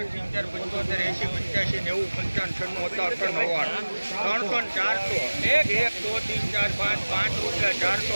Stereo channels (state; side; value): inverted; both; correlation -1.00